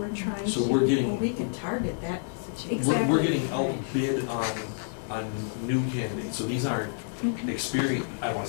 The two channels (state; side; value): silent; right; 59 dB below the other